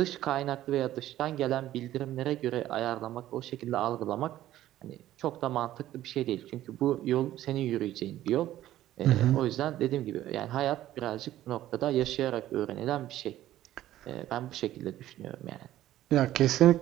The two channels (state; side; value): quieter; left; 13.7 dB